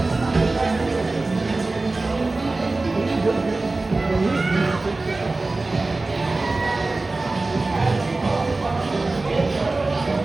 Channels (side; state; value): left; quieter; 3.3 dB